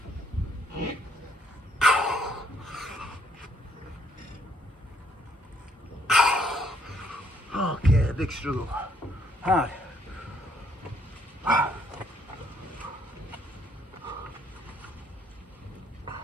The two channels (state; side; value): normal; both; correlation 0.68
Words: Okay, big struggle. Hard.